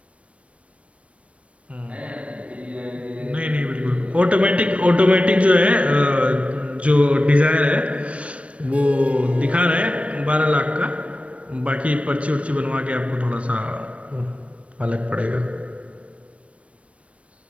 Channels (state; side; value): late; left; 0.063 ms